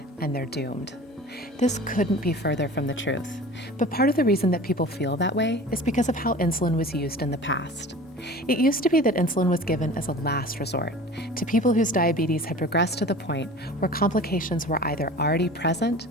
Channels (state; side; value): normal; both; correlation 0.40